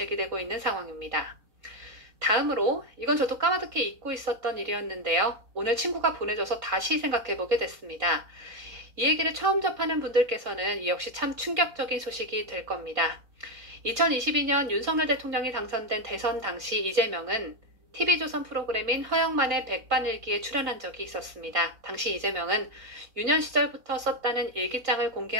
있는 상황입니다. 다음으로 이건 저도 까마득히 잊고 있었던 일이었는데요. 오늘 친구가 보내줘서 다시 생각해보게 됐습니다. 이 얘기를 처음 접하는 분들께서는 이 역시 참 충격적인 소식이 될 겁니다. 2022년 윤석열 대통령이 당선된 대선 당시 이재명은 TV조선 프로그램인 허영만의 백반일기에 출연한 적이 있었습니다. 당시 이재명은 유년 시절부터 썼다는 일기장을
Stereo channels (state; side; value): late; left; 3.9 ms